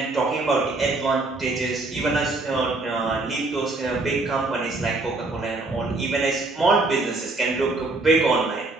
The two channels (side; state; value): left; quieter; 3.2 dB